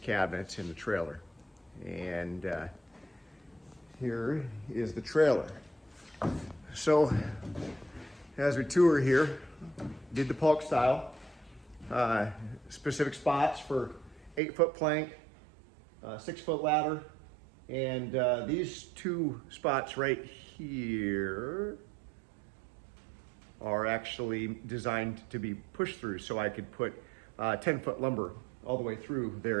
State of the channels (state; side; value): drops out; left; at 14.4 s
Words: in the trailer. And here is the trailer. So as we tour here, did the Paulk style, specific spots for 8-foot plank, 6-foot ladder, and these two spots right here are actually designed to be pushed through, so I could put 10-foot lumber all the way through